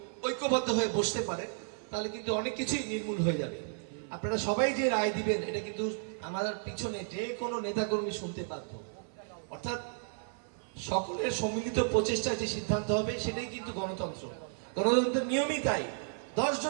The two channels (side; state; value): left; silent; 56 dB below the other